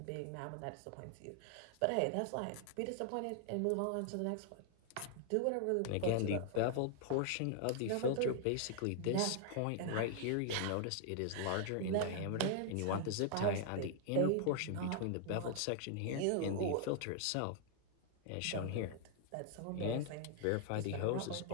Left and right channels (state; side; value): different; both; correlation 0.00